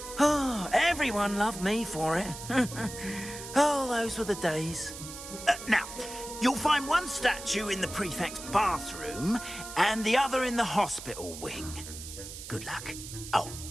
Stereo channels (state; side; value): noise; right; hiss, 11 dB below the sound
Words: Oh, everyone loved me for it. Oh, those were the days. Now, you'll find one statue in the prefect's bathroom and the other in the hospital wing. Good luck. Oh,